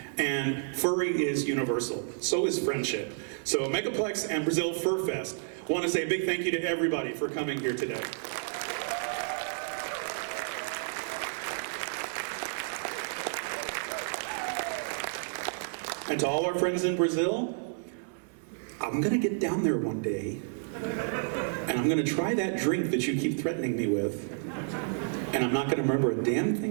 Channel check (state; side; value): silent; left; 57 dB below the other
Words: and furry is universal. So is friendship. So Megaplex and Brazil Fur Fest want to say a big thank you to everybody for coming here today. And to all our friends in Brazil, I'm gonna get down there one day, and I'm gonna try that drink that you keep threatening me with, and I'm not gonna remember a damn